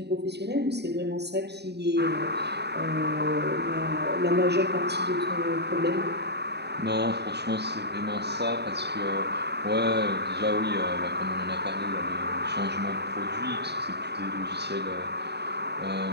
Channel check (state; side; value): late; left; 0.49 ms